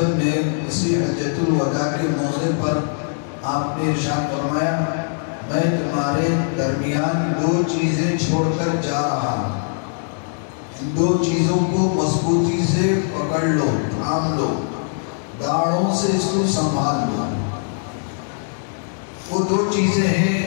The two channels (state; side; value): silent; right; 64 dB below the other